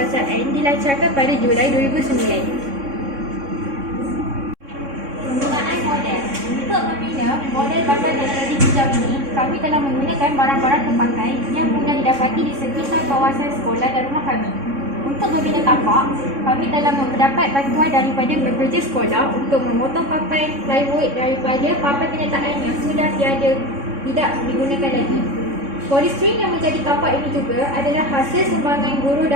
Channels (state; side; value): late; left; 3.6 ms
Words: dilancarkan pada Julai 2009. Penggunaan model. Untuk membina model bandar teknologi hijau ini, kami telah menggunakan barang-barang terpakai yang mudah didapati di sekitar kawasan sekolah dan rumah kami. Untuk membina tapak, kami telah mendapat bantuan daripada bekerja sekolah untuk memotong papan plywood daripada papan kenyataan yang sudah tidak digunakan lagi. Polistrin yang menjadi tapak ini juga adalah hasil sumbangan guru